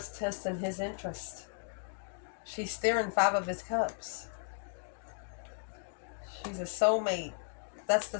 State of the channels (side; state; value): right; silent; 54 dB below the other